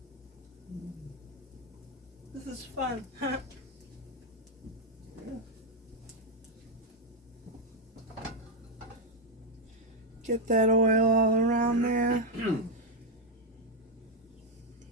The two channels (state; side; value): normal; both; correlation 0.02